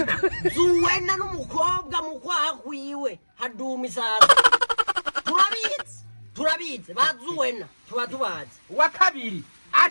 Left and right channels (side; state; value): both; inverted; correlation -1.00